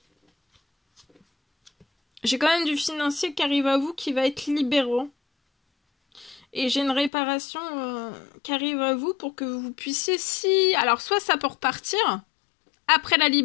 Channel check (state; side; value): drops out; right; at 7.1 s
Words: J'ai quand même du financier qui arrive à vous qui va être libérant. Et j'ai une réparation qui arrive à vous pour que vous puissiez, si... Alors, soit ça peut repartir, après la